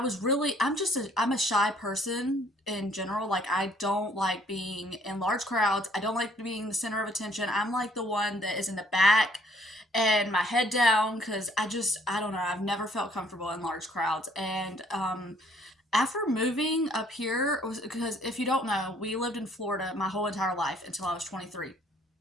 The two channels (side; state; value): both; normal; correlation 0.62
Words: a shy person in general. Like, I don't like being in large crowds. I don't like being the center of attention. I'm like the one that is in the back and my head down because I don't know. I've never felt comfortable in large crowds. And after moving up here, because if you don't know, we lived in Florida my whole entire life until I was 23.